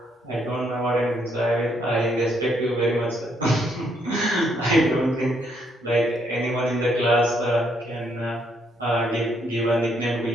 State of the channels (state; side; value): normal; both; correlation 0.72